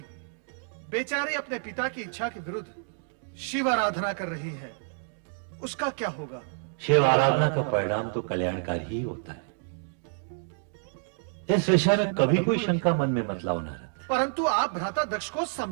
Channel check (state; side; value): silent; left; digital silence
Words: बेचारी अपने पिता की इच्छा के विरुद्ध शिव आराधना कर रही है। उसका क्या होगा? शिव आराधना का परिणाम तो कल्याणकारी ही होता है। इस विषय में कभी कोई शंका मन में मत लाओ नारद। परंतु आप भ्राता दक्ष को